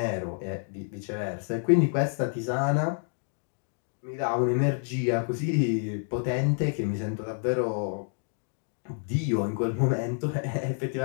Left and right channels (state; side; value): silent; right; 59 dB below the other